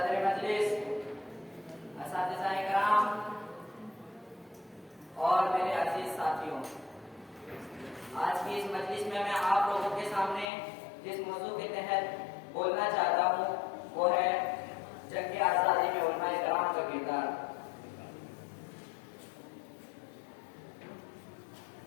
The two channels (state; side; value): drops out; right; at 10.5 s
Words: मजलिस, असातिज़ाए किराम और मेरे अजीज साथियों, आज की इस मजलिस में मैं आप लोगों के सामने जिस मौजू के तहत बोलना चाहता हूँ वो है जंग आज़ादी में उलमाए किराम का किरदार।